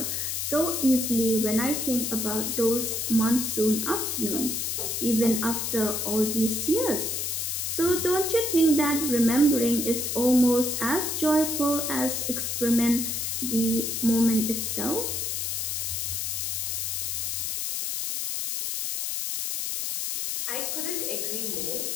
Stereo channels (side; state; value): left; noise; hiss, 1 dB below the sound